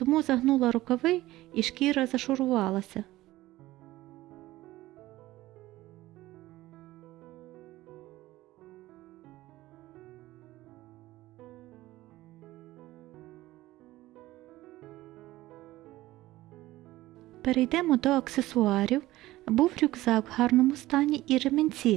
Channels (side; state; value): left; quieter; 17.0 dB